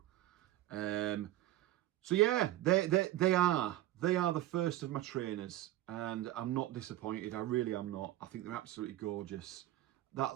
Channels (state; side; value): quieter; left; 15.0 dB